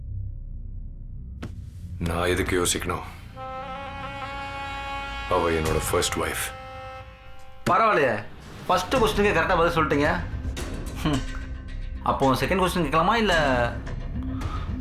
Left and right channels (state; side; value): identical; both; correlation 1.00